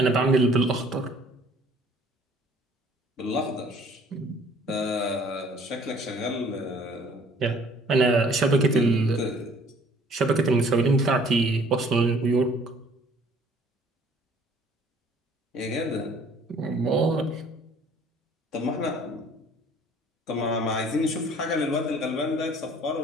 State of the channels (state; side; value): normal; both; correlation 0.55